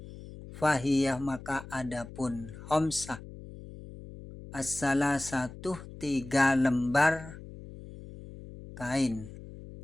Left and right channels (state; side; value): noise; left; hum, 15 dB below the sound